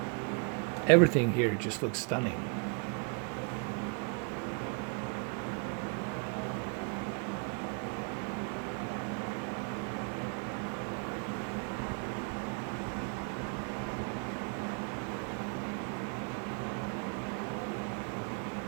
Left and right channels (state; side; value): quieter; left; 34.1 dB